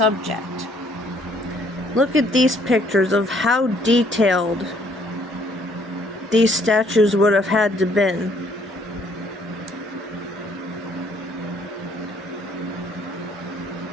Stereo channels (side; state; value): both; normal; correlation 0.64